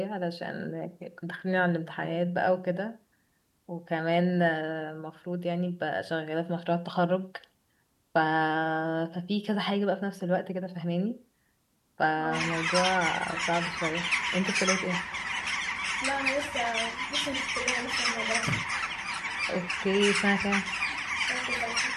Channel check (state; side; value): identical; both; correlation 1.00